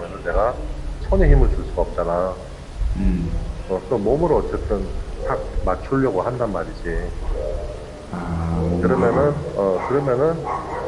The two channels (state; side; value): identical; both; correlation 1.00